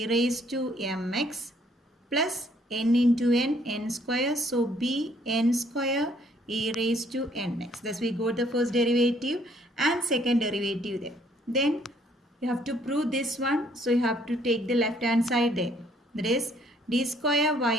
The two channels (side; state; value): both; normal; correlation 0.65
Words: raised to mx plus n into n square. So b n square e raised to nx. Thus we got the first derivative and second derivative there. Then you have to prove this one. So you have to take the left hand side there. That is d square